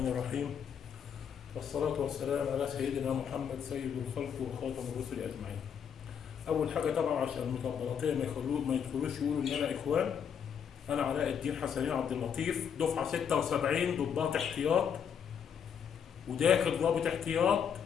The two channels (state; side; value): quieter; right; 7.7 dB